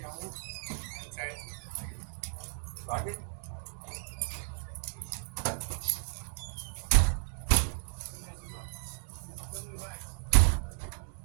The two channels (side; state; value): left; silent; digital silence